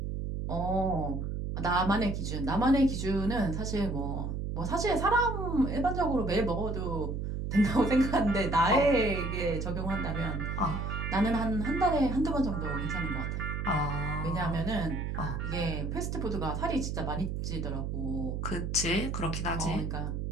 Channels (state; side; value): noise; right; hum, 3 dB below the sound